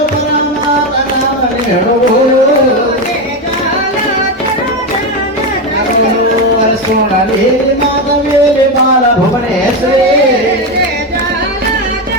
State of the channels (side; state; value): both; normal; correlation 0.12